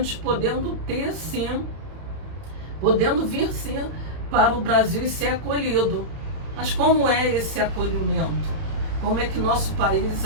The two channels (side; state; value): left; late; 31 ms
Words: podendo vir sim para o Brasil e ser acolhido. Mas como é esse acolhimento? Como é que nosso país